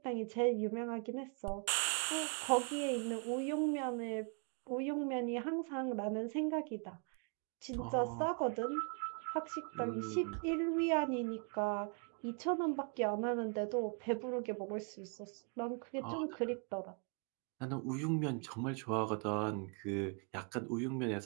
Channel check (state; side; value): quieter; left; 39.3 dB